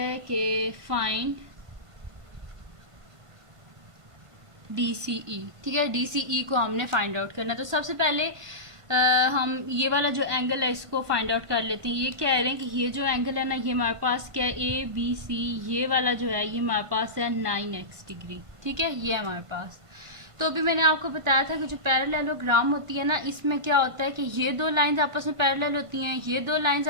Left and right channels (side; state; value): left; late; 1.5 ms